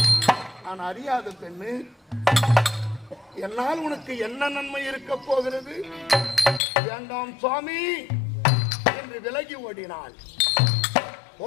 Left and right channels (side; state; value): right; drops out; at 6.6 s